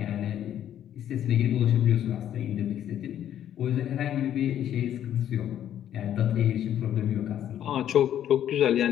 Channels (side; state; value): right; quieter; 10.7 dB